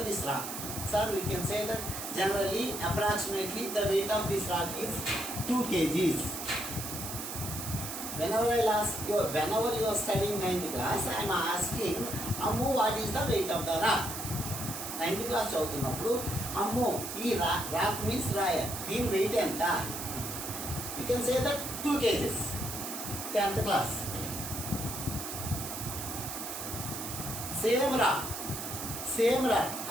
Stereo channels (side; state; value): right; noise; hiss, 6 dB below the sound